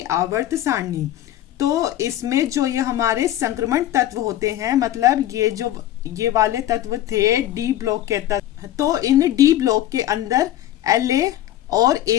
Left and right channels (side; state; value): right; quieter; 13.3 dB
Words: आवर्त सारणी, तो इसमें जो ये हमारे संक्रमण तत्व होते हैं, मतलब ये वाले तत्व थे डी ब्लॉक के तत्व, तो इन डी ब्लॉक के अंदर La और